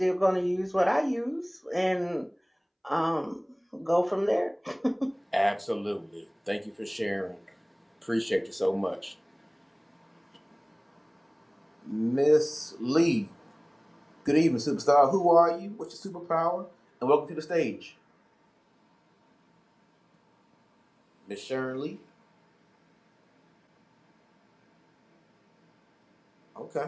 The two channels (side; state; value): both; identical; correlation 1.00